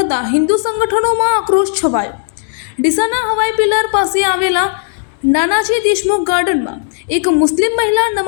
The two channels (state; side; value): silent; right; digital silence